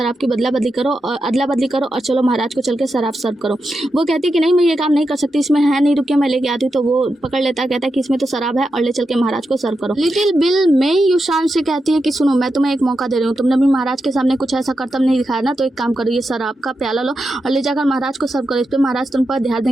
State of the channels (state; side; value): normal; both; correlation 0.88